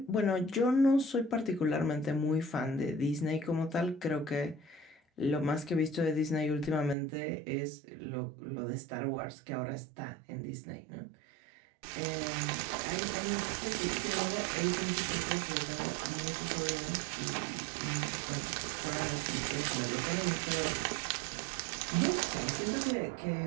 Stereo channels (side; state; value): left; drops out; at 7.0 s